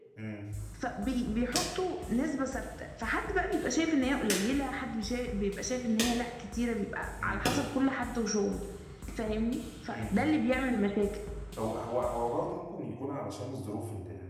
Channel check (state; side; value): identical; both; correlation 1.00